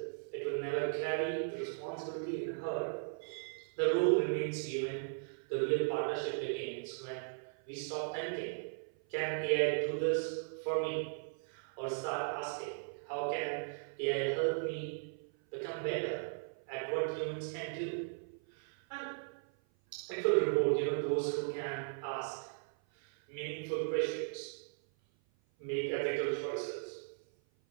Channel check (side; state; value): left; silent; 53 dB below the other